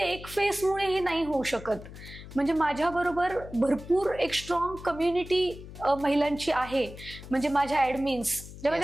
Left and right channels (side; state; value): left; noise; hum, 15 dB below the sound